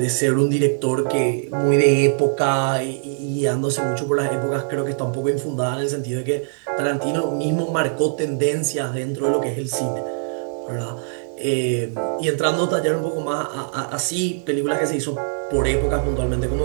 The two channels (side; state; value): left; silent; digital silence